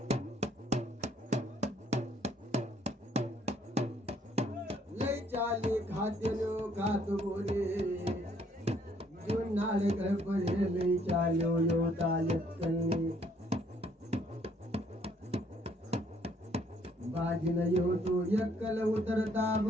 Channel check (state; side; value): normal; both; correlation 0.65